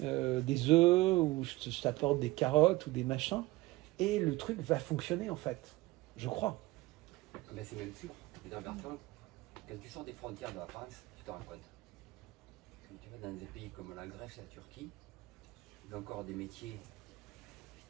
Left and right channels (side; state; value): left; quieter; 19.9 dB